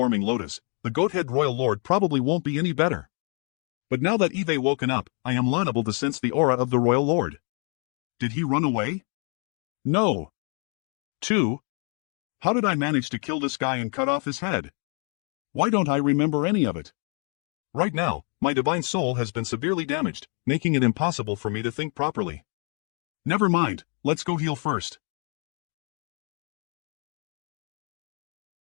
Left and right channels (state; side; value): quieter; right; 37.9 dB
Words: lotus, the goat-head Royal Lord probably won't be any better. But now that Eve woken up, I am liable to sense the aura of the Royal Lord. Did he run away? No. 2. How did I manage to kill this guy and cut off his head? Why don't I remember any of it? Right now, my divine soul has been severely damaged, making it impossible for me to think properly. Never mind, let's go heal first.